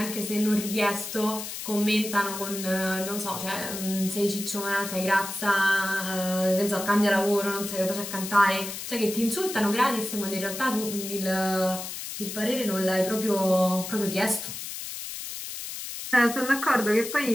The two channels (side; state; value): left; noise; hiss, 8 dB below the sound